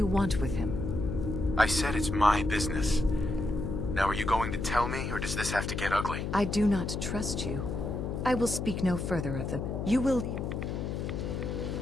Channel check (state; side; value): noise; left; hum, 3 dB below the sound